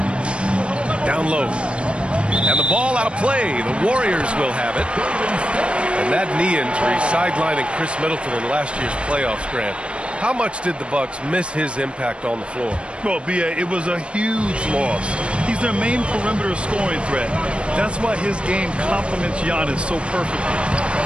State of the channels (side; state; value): left; late; 0.058 ms